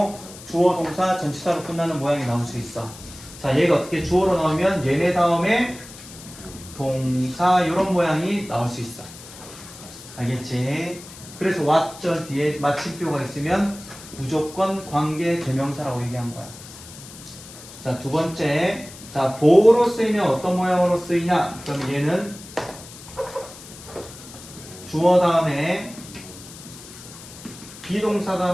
주어 동사 전치사로 끝나는 모양이 나올 수 있어. 자, 얘가 어떻게 주어로 나오면 얘네 다음에 동사 이런 모양이 나올 수 있어. 알겠지? 그래서 what 절 뒤에 마침표가 있으면 무조건 관계 대명사라고 얘기한 거야. 자, 두 번째. 자, 보호로 쓰이면 어떤 모양으로 쓰이냐? 그럼 얘는 주어 다음에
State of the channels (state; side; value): noise; left; hiss, 17 dB below the sound